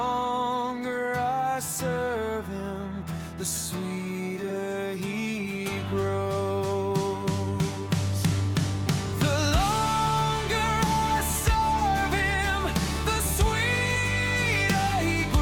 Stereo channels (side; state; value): both; identical; correlation 1.00